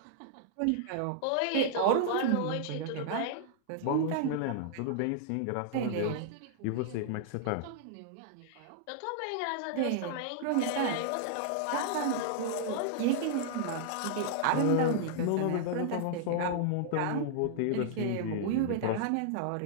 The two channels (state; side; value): different; both; correlation -0.01